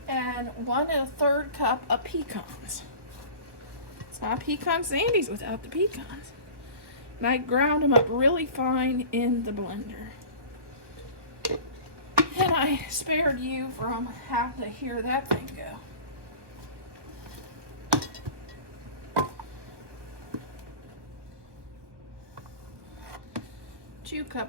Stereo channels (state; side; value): late; left; 1.2 ms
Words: And 1 1/3 cup of pecans. It's not pecan sandies without the pecans. And I ground them up really fine in the blender. And I spared you from having to hear that thing go. 2